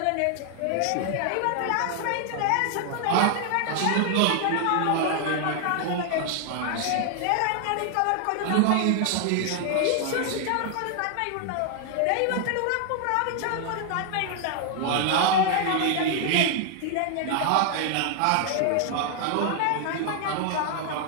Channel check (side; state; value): both; different; correlation 0.00